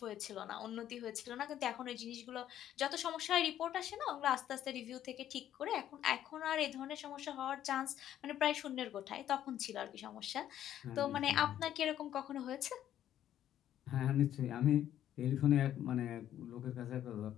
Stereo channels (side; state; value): right; quieter; 11.4 dB